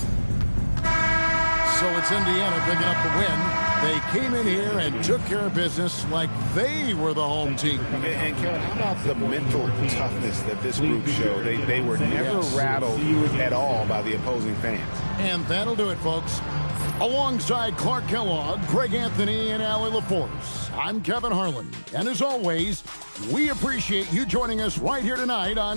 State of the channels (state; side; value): inverted; both; correlation -1.00